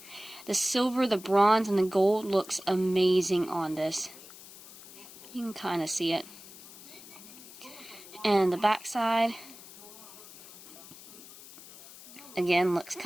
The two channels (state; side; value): noise; left; hiss, 18 dB below the sound